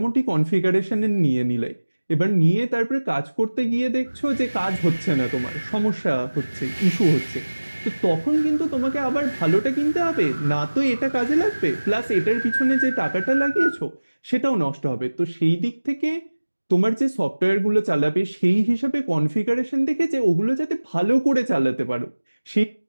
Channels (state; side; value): inverted; both; correlation -1.00